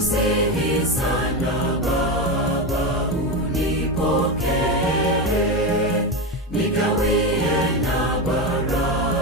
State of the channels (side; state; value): both; normal; correlation 0.15